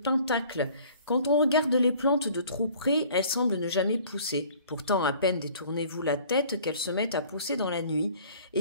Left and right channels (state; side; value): inverted; both; correlation -0.52